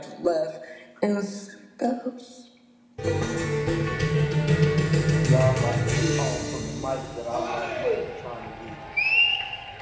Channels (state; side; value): identical; both; correlation 1.00